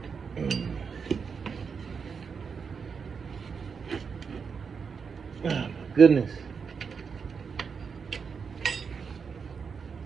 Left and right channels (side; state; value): left; quieter; 5.9 dB